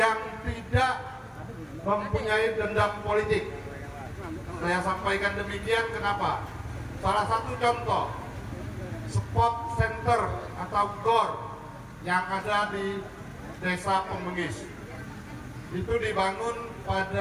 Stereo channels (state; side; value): identical; both; correlation 1.00